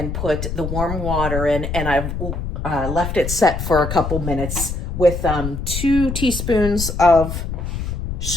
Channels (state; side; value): noise; left; rumble, 4 dB below the sound